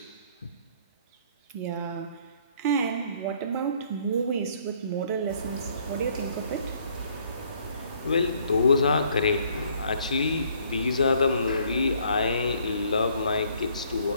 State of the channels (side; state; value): both; inverted; correlation -0.63